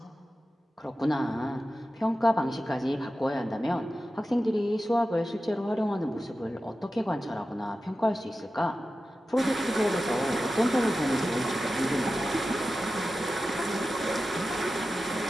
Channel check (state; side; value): normal; both; correlation 0.93